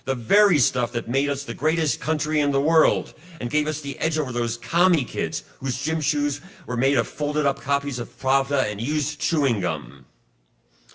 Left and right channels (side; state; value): both; identical; correlation 1.00